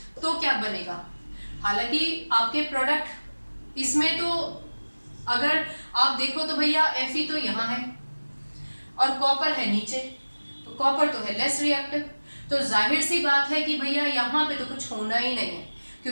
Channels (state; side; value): inverted; both; correlation -1.00